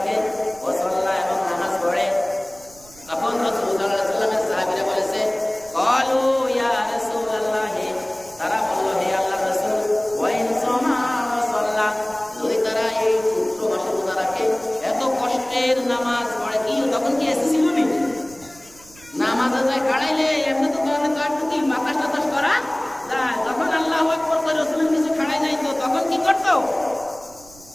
ওয়া সাল্লা, এবং নামাজ পড়ে। তখন রাসূল সাল্লাল্লাহু আলাইহি ওয়াসাল্লামের সাহাবীরা বলেছে, ক্বালু ইয়া রাসূলুল্লাহ, তারা বলল, হে আল্লাহর রাসূল, ওয়া ইন সাওমা ওয়া সাল্লা, যদি তারা এই পুত্র মাসে রোজা রাখে, এত কষ্টের নামাজ পড়ে, কি তখন কি এসে ছিল নি? নামাজে যায় খাড়াইলে এমনি তো একটু কি বাতাস টাতাস করা যায়। যখন আল্লাহু আকবার করে রাসূলের কিছু খাড়াই নাই, তো তখন কি করতো?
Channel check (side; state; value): right; noise; rumble, 24 dB below the sound